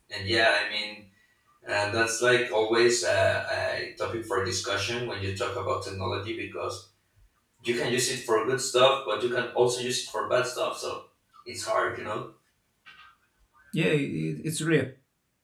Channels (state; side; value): identical; both; correlation 1.00